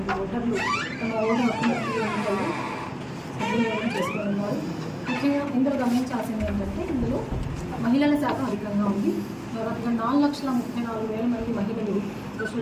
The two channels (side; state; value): both; identical; correlation 1.00